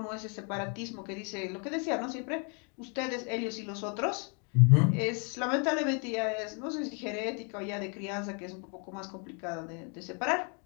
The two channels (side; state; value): right; quieter; 37.3 dB